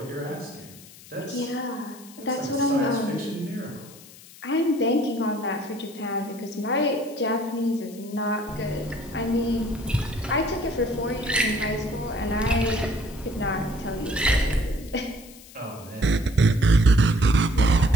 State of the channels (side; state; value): left; noise; hiss, 20 dB below the sound